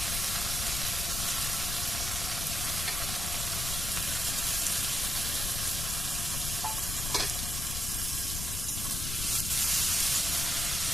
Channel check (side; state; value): left; noise; rumble, 4 dB below the sound